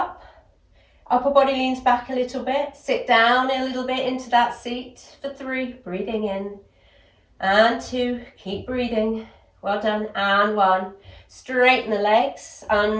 Upper body leans back a little bit. Sit down a little bit into that seat for 3. Breathing in. And 2. Keep breathing. Well done. And 1. Straighten the legs.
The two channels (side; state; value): both; identical; correlation 1.00